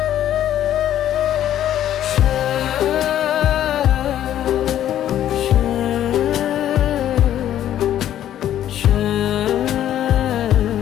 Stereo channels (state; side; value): quieter; right; 11.5 dB